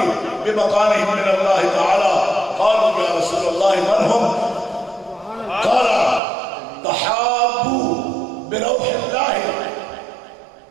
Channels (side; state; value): left; drops out; at 6.2 s